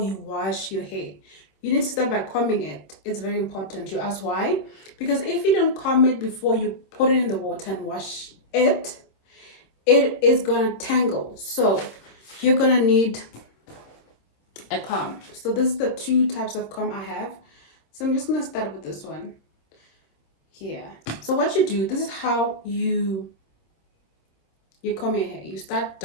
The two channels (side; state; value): right; late; 26 ms